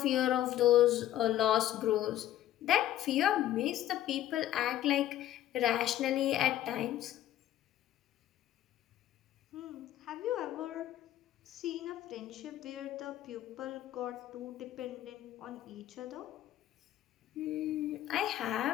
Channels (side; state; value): right; quieter; 12.8 dB